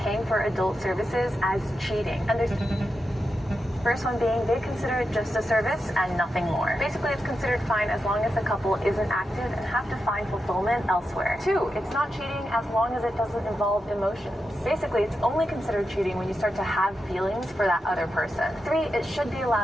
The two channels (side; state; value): both; normal; correlation 0.88